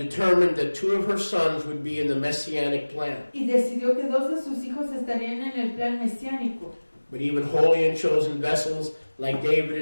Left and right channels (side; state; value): both; inverted; correlation -1.00